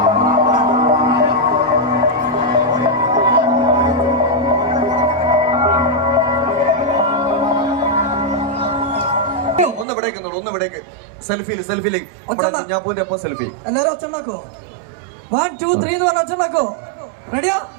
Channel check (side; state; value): left; drops out; at 9.9 s